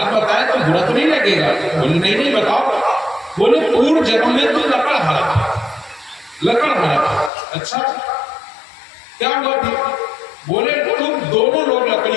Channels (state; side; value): drops out; right; at 7.3 s